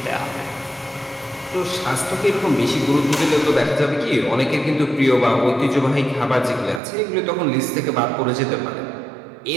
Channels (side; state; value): left; drops out; at 6.8 s